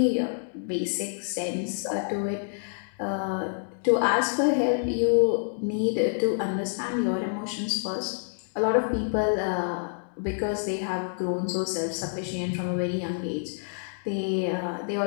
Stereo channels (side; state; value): right; silent; digital silence